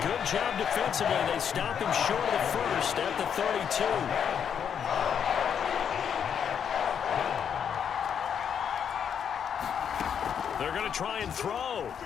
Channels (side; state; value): right; quieter; 7.9 dB